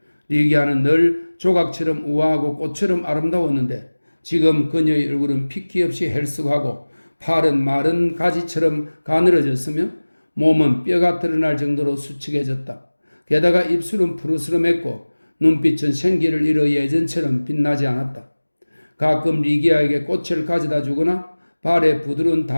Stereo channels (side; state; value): both; inverted; correlation -1.00